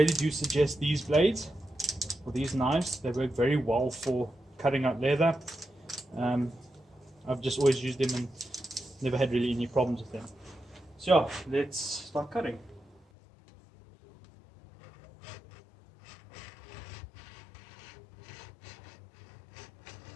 do suggest these blades, or these knives. They work very well for cutting out leather. I've just always used them and never had really any problems with them. So let's start cutting.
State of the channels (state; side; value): drops out; right; at 13.1 s